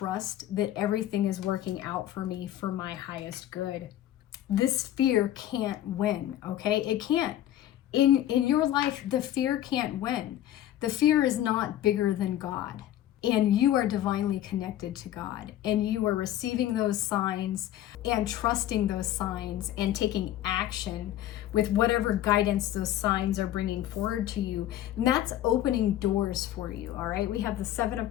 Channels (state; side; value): quieter; right; 12.6 dB